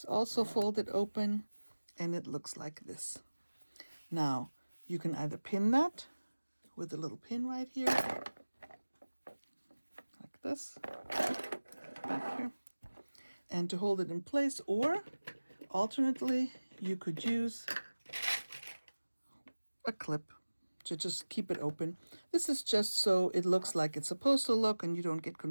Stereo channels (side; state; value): both; inverted; correlation -1.00